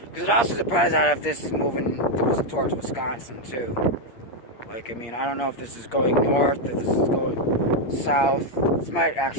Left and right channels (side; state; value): right; late; 8.3 ms